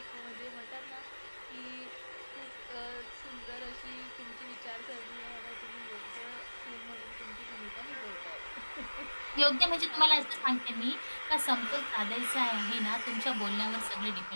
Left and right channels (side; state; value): both; inverted; correlation -1.00